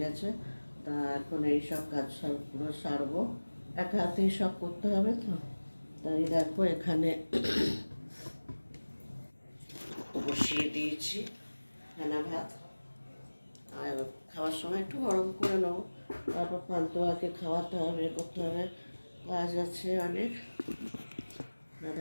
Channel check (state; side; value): inverted; both; correlation -1.00